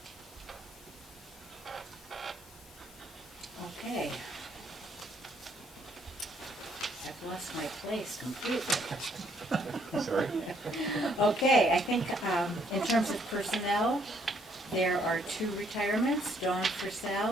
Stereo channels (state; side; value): normal; both; correlation 0.68